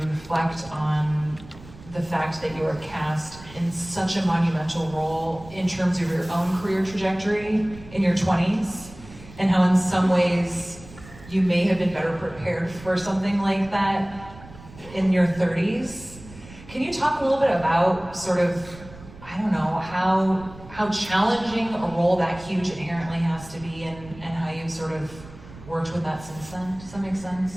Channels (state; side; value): noise; right; rumble, 18 dB below the sound